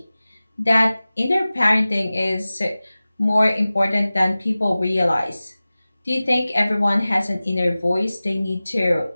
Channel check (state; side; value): inverted; both; correlation -0.97